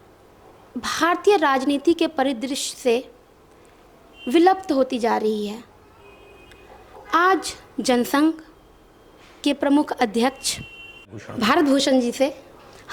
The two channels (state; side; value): identical; both; correlation 1.00